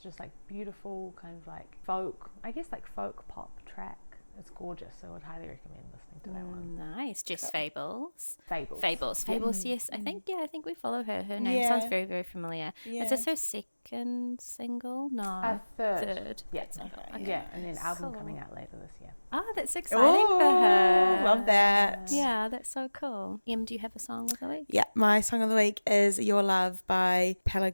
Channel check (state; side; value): inverted; both; correlation -1.00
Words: just like beautiful kind of like folk, I guess like folk pop track. It's gorgeous, so I would highly recommend listening to that one. Nice. Jess Fables. Fables, Yes. I think we follow her. Her name sounds very, very familiar. Yeah. Is this her second single? No. Third. Yeah. Okay. Yeah, and then album coming out later this year. Oh, that's exciting for her. Love that. Yeah, that's so cool. Em, do you have a song of the week? Yeah, my song of the week is Your Love by